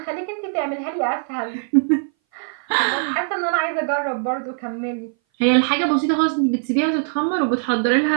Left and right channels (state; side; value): silent; left; 60 dB below the other